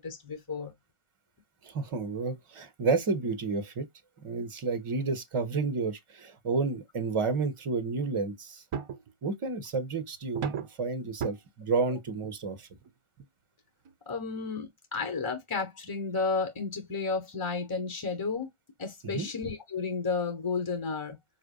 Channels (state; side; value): late; left; 1.4 ms